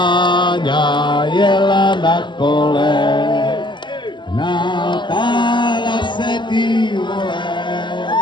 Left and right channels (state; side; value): late; right; 0.22 ms